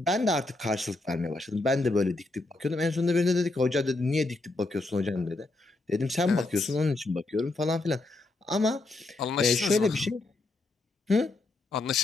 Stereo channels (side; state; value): right; quieter; 3.0 dB